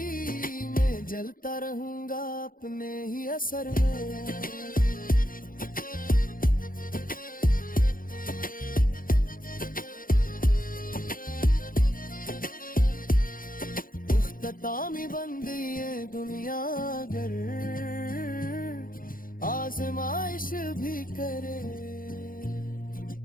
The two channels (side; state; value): right; late; 0.41 ms